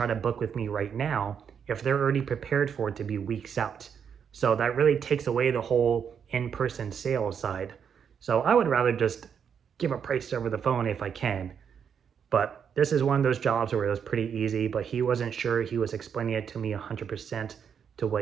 to book with me right now if they're already prepared for it to be weeks out. So that really takes away the whole in-person sales side. So I would rather just give a price over the phone if I can. But this is one of those jobs where it was pretty easy, but he wasn't sure. He was explaining it to me 100% to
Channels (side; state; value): left; quieter; 7.4 dB